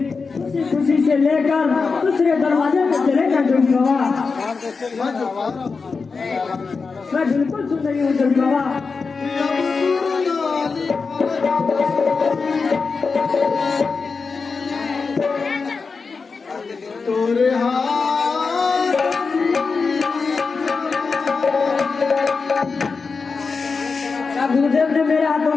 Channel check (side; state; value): right; quieter; 4.7 dB